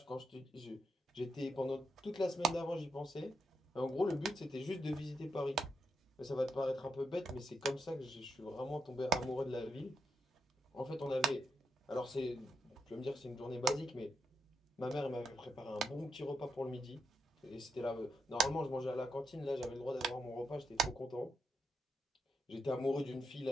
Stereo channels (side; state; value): both; normal; correlation 0.83